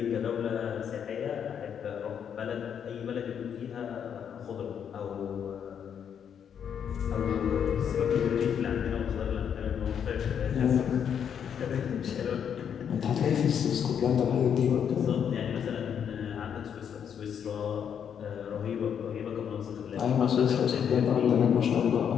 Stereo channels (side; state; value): right; quieter; 8.1 dB